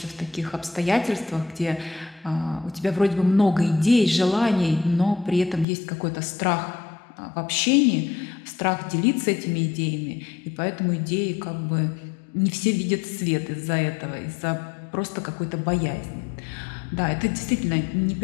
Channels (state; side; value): drops out; right; at 5.7 s